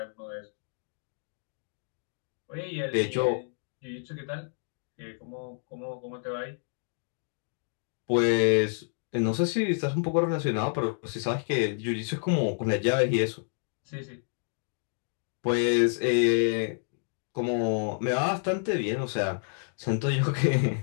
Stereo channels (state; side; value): silent; right; digital silence